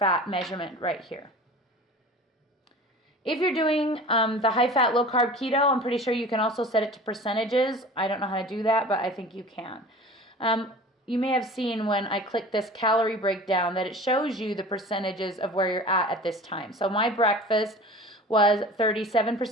measurement right here. If you're doing the high-fat, low-carb keto, I'm pretty sure you can also set it to percentages. I don't know how to do that, but I think you can. You may have seen when I click this calorie breakdown that it shows you the percentages of where you're at this time. So my breakfast was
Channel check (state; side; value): normal; both; correlation 0.40